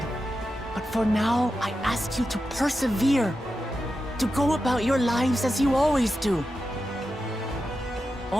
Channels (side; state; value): both; normal; correlation 0.90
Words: But for now, I ask you to persevere. To go about your lives as you always do.